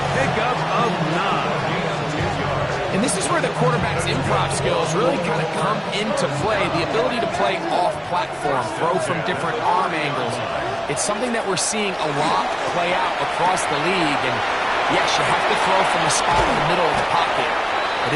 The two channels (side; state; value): both; identical; correlation 1.00